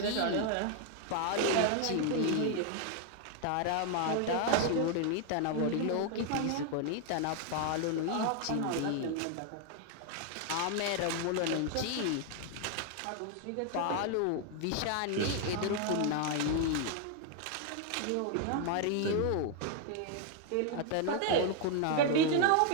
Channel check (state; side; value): different; both; correlation 0.00